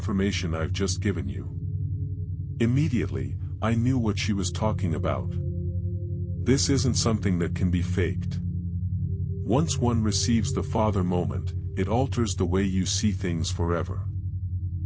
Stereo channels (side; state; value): both; identical; correlation 1.00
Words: I've just given you. Immediately, I knew what she was talking about. This isn't something that can be faked. Once one receives the Father moment, it alters the way you see things forever.